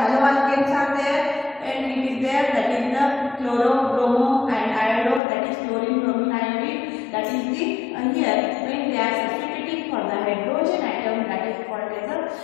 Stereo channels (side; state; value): right; drops out; at 5.2 s